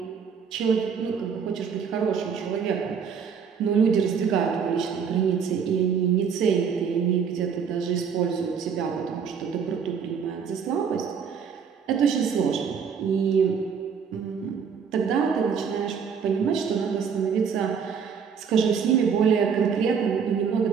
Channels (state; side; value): quieter; left; 6.6 dB